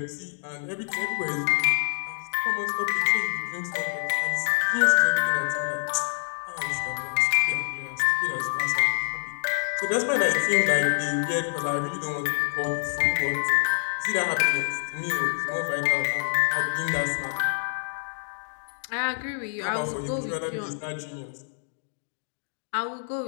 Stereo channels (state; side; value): silent; right; digital silence